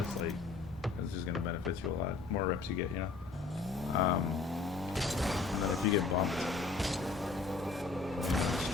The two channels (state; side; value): quieter; right; 4.2 dB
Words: like it's just gonna benefit you a lot. More reps you get, you know. And then if you get bumped, just